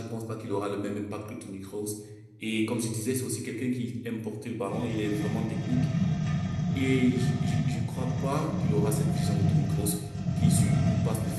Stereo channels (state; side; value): identical; both; correlation 1.00